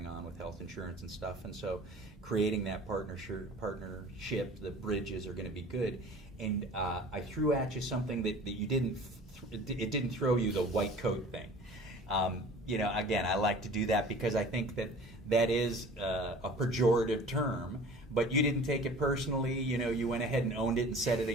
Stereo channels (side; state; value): both; normal; correlation 0.44